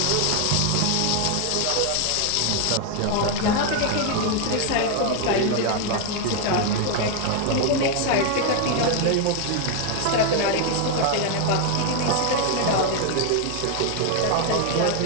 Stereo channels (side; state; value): both; different; correlation 0.01